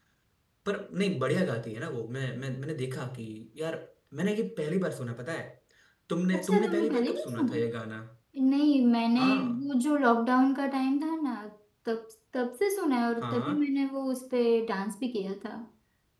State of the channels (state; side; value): identical; both; correlation 1.00